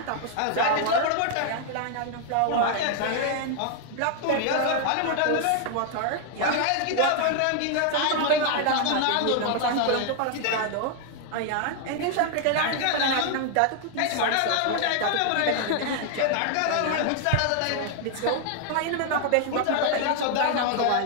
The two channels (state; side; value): different; both; correlation 0.00